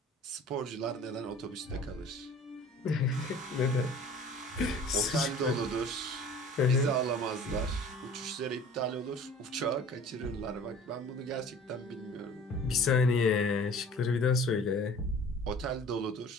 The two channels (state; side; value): normal; both; correlation 0.46